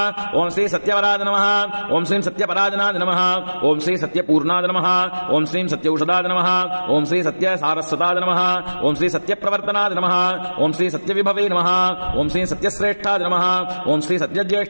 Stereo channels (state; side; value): inverted; both; correlation -1.00